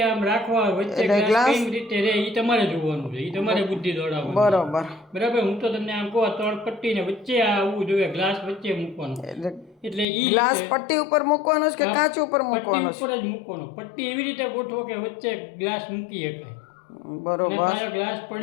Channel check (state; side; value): drops out; right; at 10.1 s